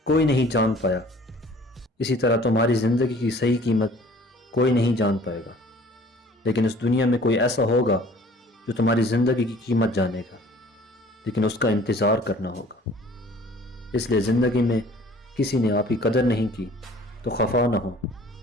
کوئی نہیں جان پایا، اسی طرح تمہاری زندگی کی صحیح قیمت کوئی نہیں جان پائے گا، لیکن اس دنیا میں کوئی ایسا ہوگا جو تمہاری زندگی کی قیمت جانے گا، لیکن اس کا انتظار کرنا ہوگا۔ اس لیے زندگی میں کسی نے آپ کی قدر نہیں کی تو خفا نہ ہو،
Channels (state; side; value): normal; both; correlation 0.52